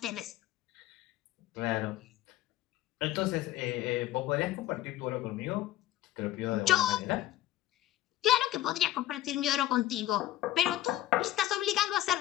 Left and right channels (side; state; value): right; quieter; 14.4 dB